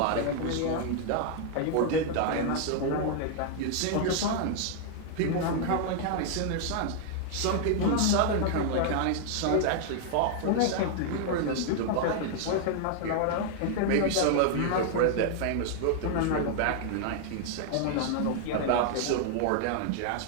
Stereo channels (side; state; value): both; different; correlation 0.00